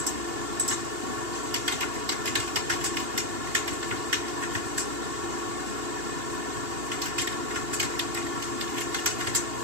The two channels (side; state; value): left; late; 2.8 ms